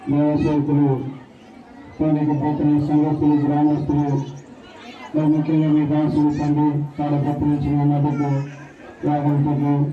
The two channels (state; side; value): identical; both; correlation 1.00